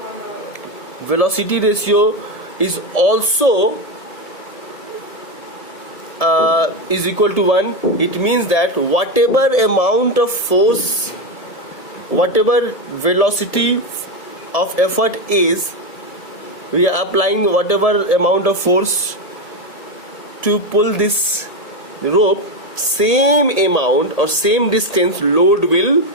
is also is equal to 1, it means that whatever amount of force, whatever velocity of effort is, we are applying whatever amount of force to pull this rope, same amount or same distance load will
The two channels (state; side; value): late; right; 1.8 ms